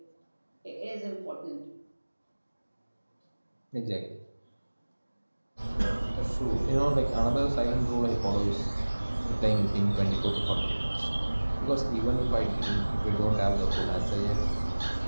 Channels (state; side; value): inverted; both; correlation -1.00